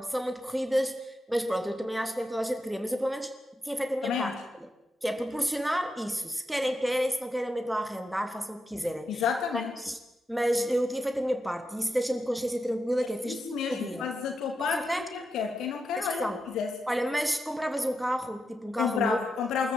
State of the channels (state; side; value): normal; both; correlation 0.86